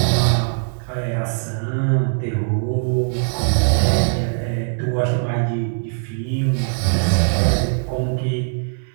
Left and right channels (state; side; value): silent; left; digital silence